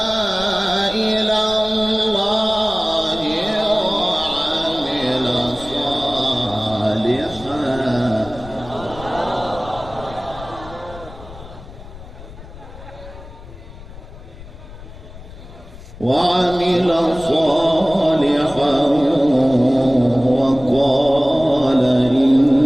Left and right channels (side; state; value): left; noise; rumble, 16 dB below the sound